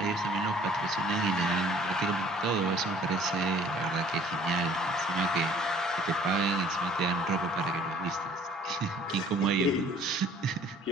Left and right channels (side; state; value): both; normal; correlation 0.55